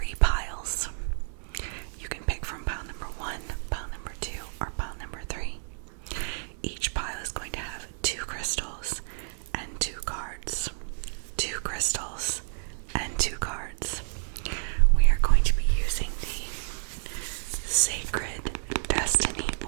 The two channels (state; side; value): silent; left; digital silence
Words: piles. You can pick from pile number 1, pile number 2, or pile number 3. Each pile is going to have 2 crystals and 2 cards. 2 crystals and 2 cards. We are going to be using the Sacred Destiny